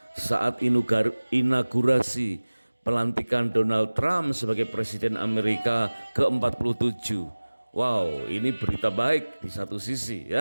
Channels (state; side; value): inverted; both; correlation -1.00